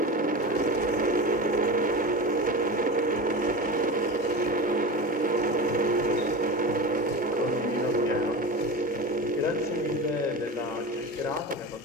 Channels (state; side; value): normal; both; correlation 0.27